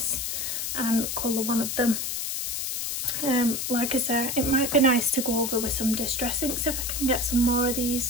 and colour one of them. Like I said, it might be nice to go over with some distress inks if I can get some more of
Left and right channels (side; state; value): left; noise; hiss, 2 dB below the sound